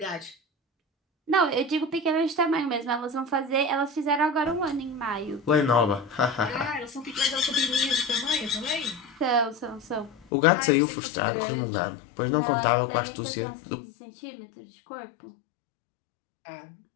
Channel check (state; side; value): drops out; right; at 10.2 s